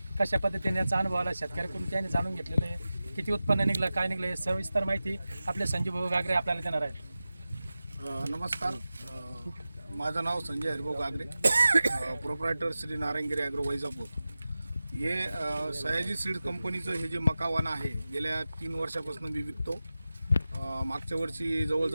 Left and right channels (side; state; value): both; inverted; correlation -0.95